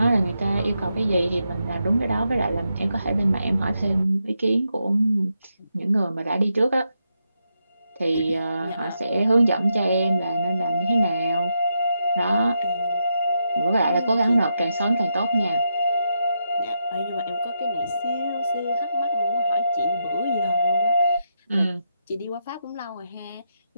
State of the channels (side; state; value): both; inverted; correlation -0.83